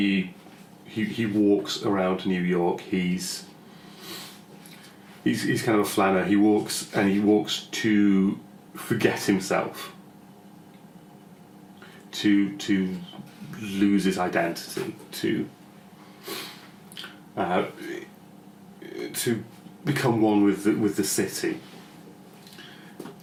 walks around New York. He's kind of a flanner. He walks to forget himself, to lose his identity, to become one with the city,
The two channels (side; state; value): both; identical; correlation 1.00